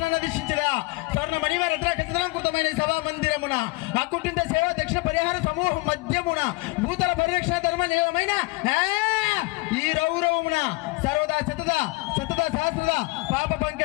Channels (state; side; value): quieter; right; 24.3 dB